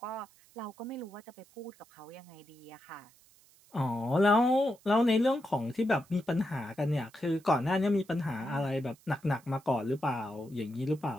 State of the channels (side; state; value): right; noise; hiss, 28 dB below the sound